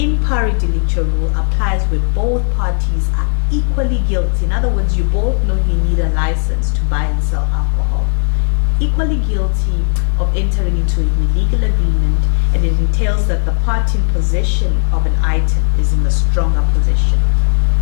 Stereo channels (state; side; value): silent; right; digital silence